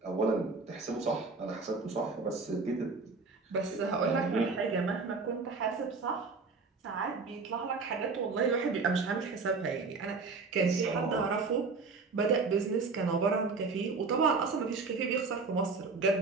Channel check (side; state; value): left; quieter; 4.3 dB